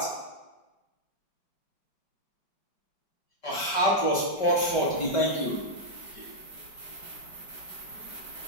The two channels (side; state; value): right; late; 5.2 ms